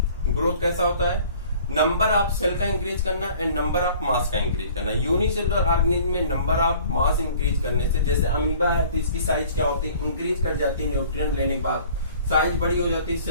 ग्रोथ कैसा होता है, नंबर ऑफ सेल का इंक्रीज करना एंड नंबर ऑफ मास का इंक्रीज करना। यूनिसेलुलर ऑर्गेनिज्म में नंबर ऑफ मास इंक्रीज करने से, जैसे अमीबा है तो इसकी साइज क्या होती है, इंक्रीज कर जाती है, न्यूट्रिएंट लेने के बाद साइज बड़ी हो जाती है,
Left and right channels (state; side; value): inverted; both; correlation -0.51